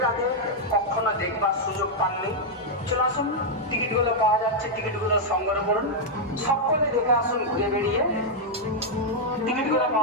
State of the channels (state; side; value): normal; both; correlation -0.03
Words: আগে কখনো দেখবার সুযোগ পাননি, চলে আসুন, টিকিটগুলো পাওয়া যাচ্ছে, টিকিটগুলো সংগ্রহ করুন, সকলে দেখে আসুন। ঘুরে বেরিয়ে টিকিটগুলো